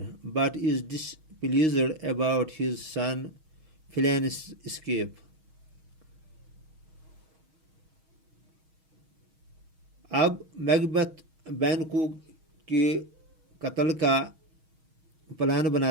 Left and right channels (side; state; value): left; late; 6.3 ms